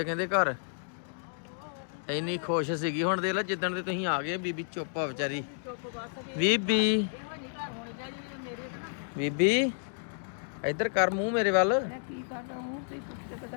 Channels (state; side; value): silent; right; digital silence